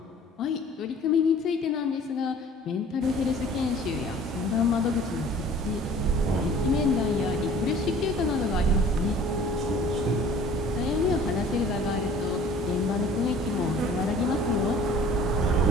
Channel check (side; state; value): both; normal; correlation 0.49